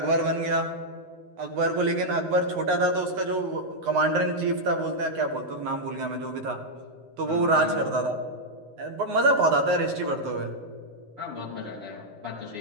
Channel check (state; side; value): late; left; 10 ms